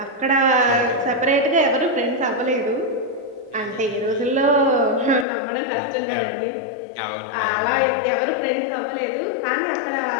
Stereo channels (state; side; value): drops out; right; at 5.2 s